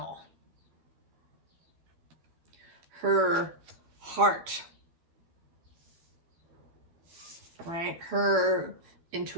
Her heart, right? Her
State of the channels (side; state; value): left; late; 12 ms